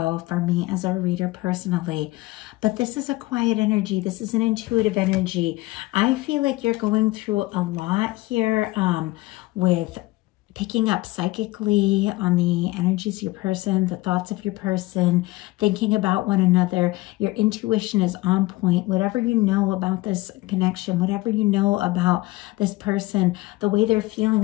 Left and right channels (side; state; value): right; quieter; 20.0 dB